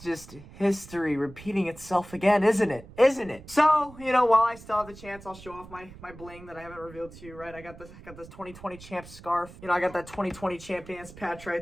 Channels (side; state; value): right; noise; rumble, 18 dB below the sound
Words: history repeating itself again, isn't it? Isn't it? So, while I still have the chance, I'll show off my bling that I haven't revealed to you, right? I got this 2020 champ scarf. I got that 2020 champions patch